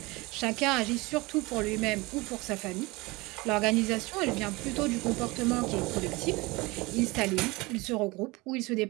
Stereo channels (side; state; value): left; quieter; 23.4 dB